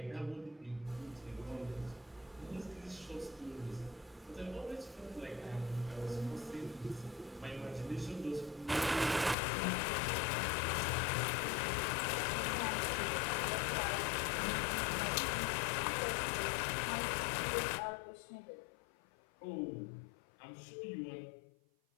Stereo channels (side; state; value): right; drops out; at 9.3 s